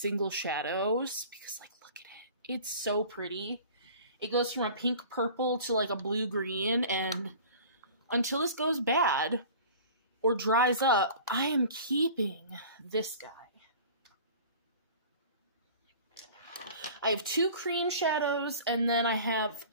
shadows because, like, look at it. It's so pretty. It goes from a pink purple to like a blue green, and until this goes bad or dries up, I am keeping this guy. I have 2 cream shadows, and then I have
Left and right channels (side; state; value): both; inverted; correlation -0.43